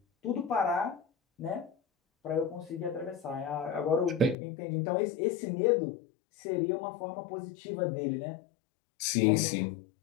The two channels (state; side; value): drops out; right; at 4.4 s